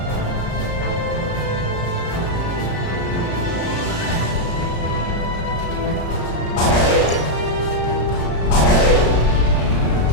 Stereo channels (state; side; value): late; right; 35 ms